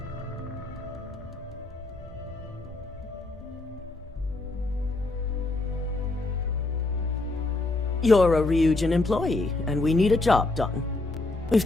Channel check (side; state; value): right; quieter; 3.1 dB